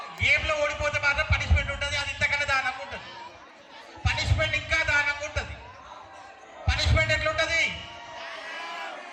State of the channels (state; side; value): identical; both; correlation 1.00